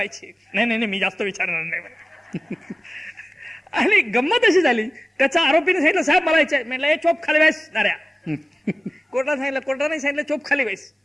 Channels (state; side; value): normal; both; correlation 0.97